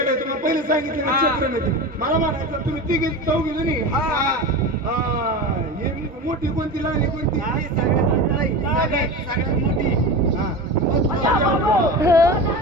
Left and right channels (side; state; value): both; normal; correlation 0.27